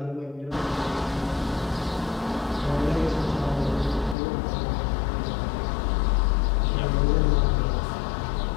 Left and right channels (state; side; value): drops out; right; at 4.2 s